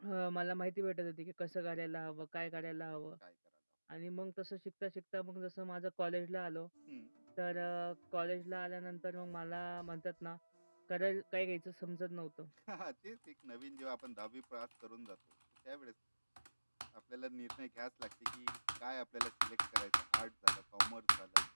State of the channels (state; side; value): inverted; both; correlation -1.00